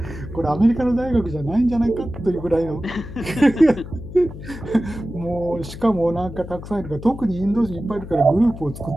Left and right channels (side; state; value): left; noise; hum, 12 dB below the sound